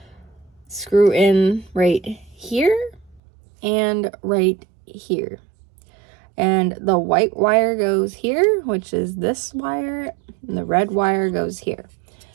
screw in right here and right here. And the white wire goes here, which is this wire, and the red wire goes here.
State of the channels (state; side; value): drops out; left; at 3.2 s